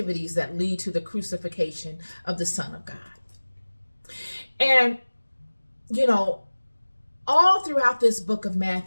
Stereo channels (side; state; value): both; inverted; correlation -1.00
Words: that lead to the crucifixion of the Son of God. And, all throughout this book of